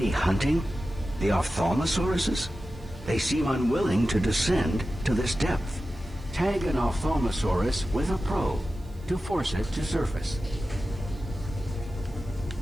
hunting the ophthalmosauruses? They seem unwilling to descend to this depth. Tag an ophthalmosaurus with a probe to force it to surface.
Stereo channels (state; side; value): noise; right; hiss, 30 dB below the sound